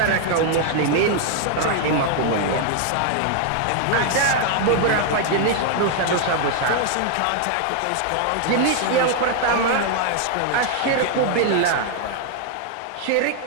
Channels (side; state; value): both; different; correlation 0.00